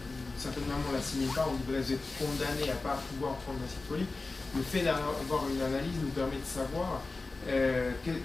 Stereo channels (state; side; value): quieter; right; 3.6 dB